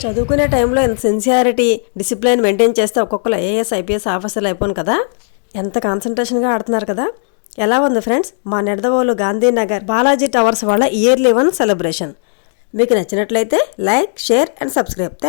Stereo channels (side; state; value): right; silent; 65 dB below the other